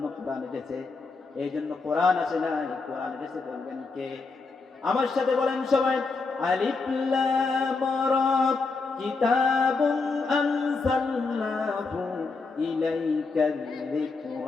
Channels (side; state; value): right; quieter; 4.1 dB